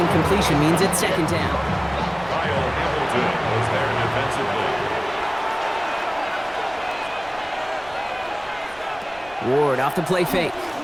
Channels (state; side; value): noise; right; rumble, 23 dB below the sound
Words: incompletion means it's 2nd down. Kyle Hamilton was there defensively. Ward off the play fake.